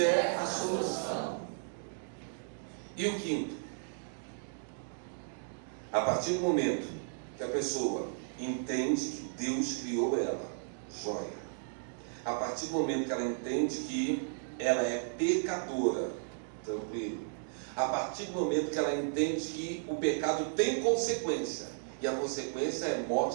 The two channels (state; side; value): silent; left; digital silence